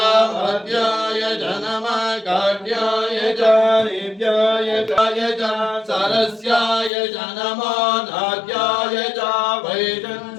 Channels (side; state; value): right; drops out; at 6.9 s